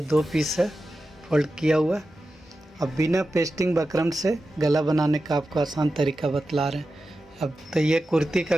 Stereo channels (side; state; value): both; normal; correlation 0.92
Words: 2 पीस है फोल्ड किया हुआ। अब बिना पेस्टिंग बकरम से गला बनाने का आपको आसान तरीका बतला रहे हैं। अब तो ये कुर्ती का